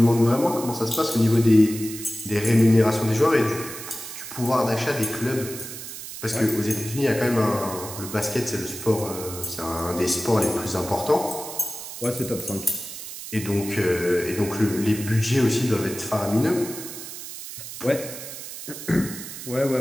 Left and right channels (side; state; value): right; noise; hiss, 10 dB below the sound